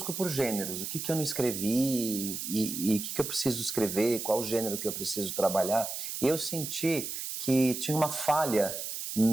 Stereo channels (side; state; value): right; noise; hiss, 5 dB below the sound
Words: por gêneros, o que eu não escrevi e o que eu preciso escrever, qual o gênero que eu preciso trabalhar. E eu senti que tinha uma falha